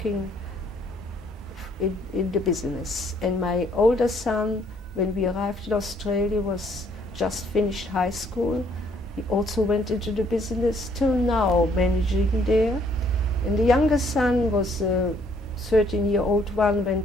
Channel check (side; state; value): both; normal; correlation 0.65